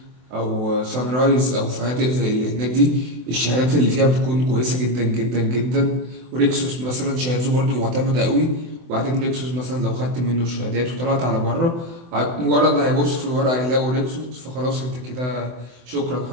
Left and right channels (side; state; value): left; late; 24 ms